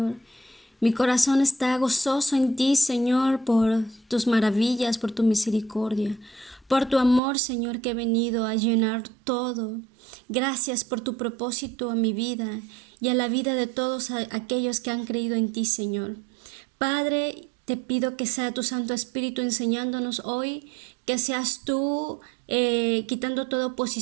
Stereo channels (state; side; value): drops out; left; at 7.2 s